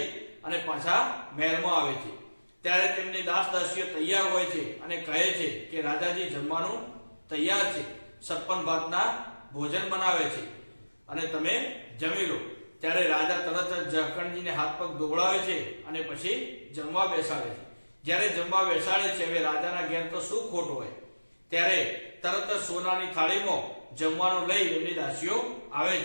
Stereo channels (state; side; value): inverted; both; correlation -1.00